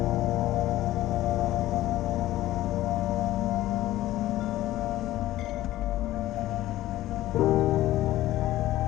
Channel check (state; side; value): quieter; right; 15.3 dB